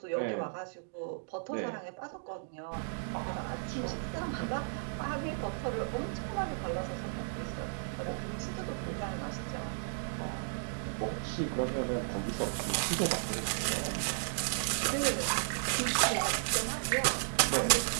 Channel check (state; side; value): silent; left; digital silence